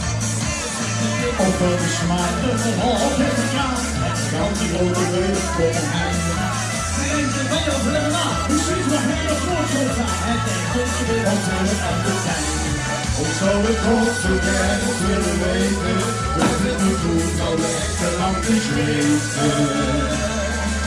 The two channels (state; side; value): identical; both; correlation 1.00